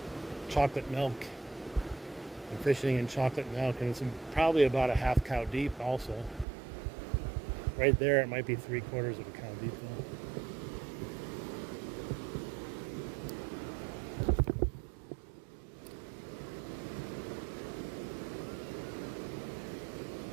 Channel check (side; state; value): left; drops out; at 6.5 s